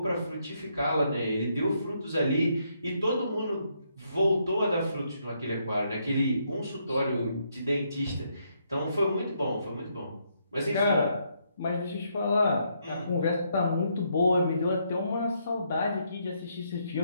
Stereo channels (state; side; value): inverted; both; correlation -0.75